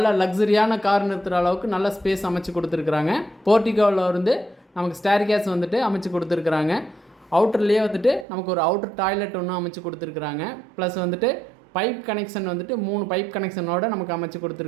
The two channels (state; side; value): drops out; left; at 8.2 s